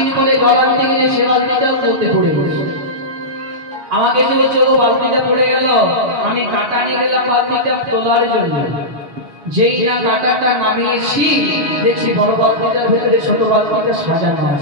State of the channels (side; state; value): left; late; 6.4 ms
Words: পরে জল আনতে গেছে, সে বালতিটাও কুয়োতে পড়ে গেছে। আমাকে যে বলছে ও বালতিটা পড়ে গেল, আমি কাটা নিয়ে গেলাম বালতিটা তোলার জন্য। যেই না কাটাটা নামিয়েছি, দেখছি বড় বালতিটার ভিতরে ছোট বালতিটা সাজানো